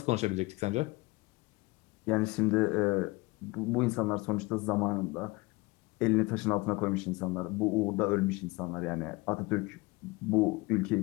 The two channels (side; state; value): right; quieter; 23.8 dB